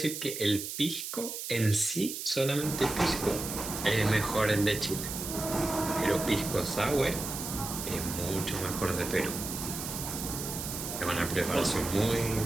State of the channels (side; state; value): right; noise; hiss, 6 dB below the sound